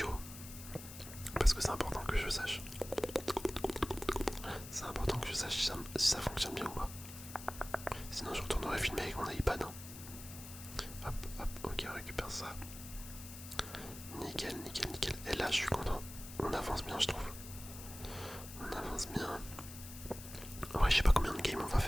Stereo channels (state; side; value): noise; left; hiss, 13 dB below the sound